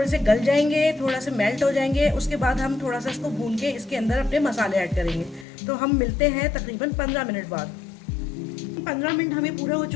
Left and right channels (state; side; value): drops out; right; at 5.5 s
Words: से गल जाएंगे, थोड़ा से मेल्ट हो जाएंगे, उसके बाद हम थोड़ा सा इसको भून के इसके अंदर अपने मसाले ऐड करेंगे। तो हम मिलते हैं तकरीबन 15 मिनट बाद। 15 मिनट हमें पूरे हो